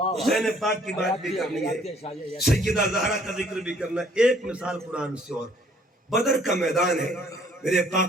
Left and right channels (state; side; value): normal; both; correlation 0.60